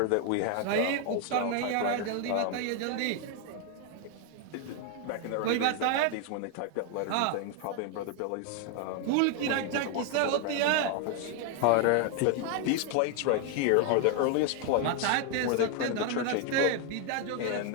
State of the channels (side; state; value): both; different; correlation 0.01